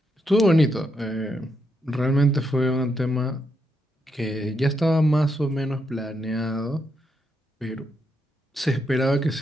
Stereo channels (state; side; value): normal; both; correlation 0.80